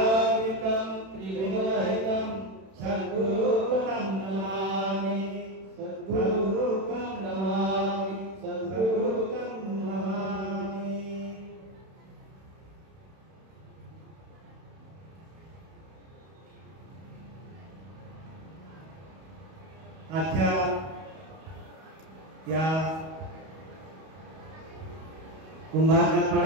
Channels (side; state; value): left; late; 31 ms